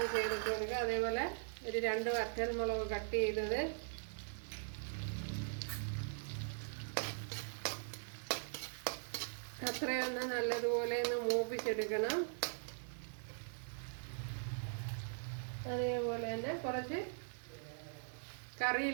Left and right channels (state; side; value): silent; left; digital silence